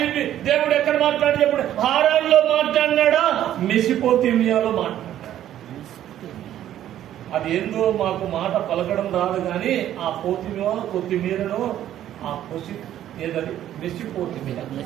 చెప్పి దేవుడు ఎక్కడ మాట్లాడి చెప్పాడు? హారాన్లో మాట్లాడినాడా, మెసిపోతిమియాలో మాట్లాడాడు. అది ఏందో మాకు మాట పలకడం రాదు కానీ ఆ పోతిమియా కొత్తిమీరను ఆ పొసి ఏదది మెసిపోతిమియా,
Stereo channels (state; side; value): quieter; left; 11.8 dB